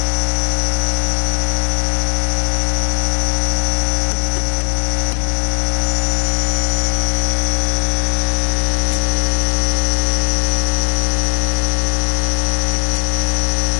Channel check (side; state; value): right; silent; digital silence